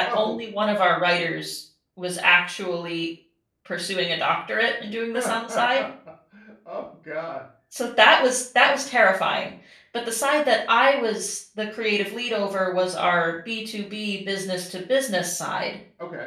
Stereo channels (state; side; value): identical; both; correlation 1.00